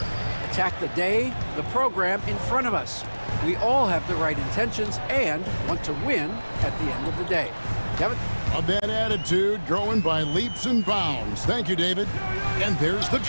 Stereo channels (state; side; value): inverted; both; correlation -1.00